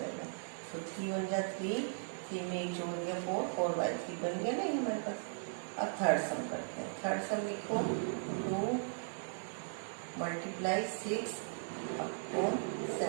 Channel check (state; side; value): silent; left; 53 dB below the other